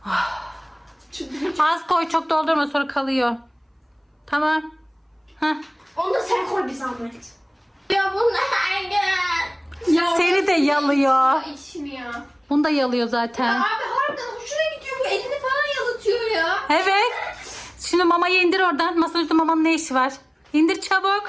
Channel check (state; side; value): identical; both; correlation 1.00